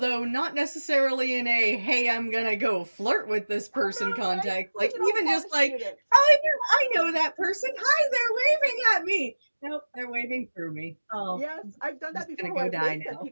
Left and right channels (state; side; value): inverted; both; correlation -1.00